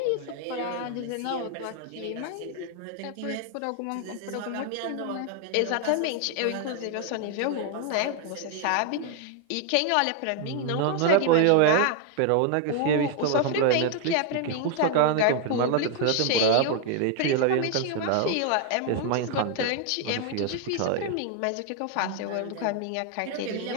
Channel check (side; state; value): both; different; correlation 0.00